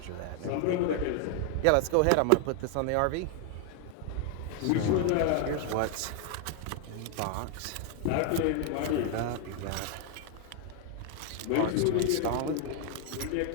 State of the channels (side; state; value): both; different; correlation 0.00